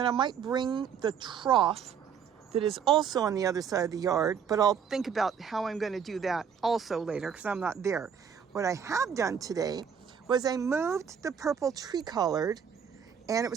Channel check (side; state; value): left; quieter; 7.4 dB